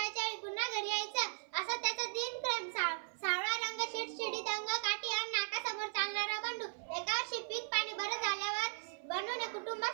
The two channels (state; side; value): silent; left; 53 dB below the other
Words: वेळी पुन्हा घरी यायचं. असं त्याचं दिनक्रम. सावळा रंग, शिडशिडीत अंग, काठी आणि नाकासमोर चालणारा बंडू. एका वर्षी पीक पाणी बरं झाल्यावर बंडूने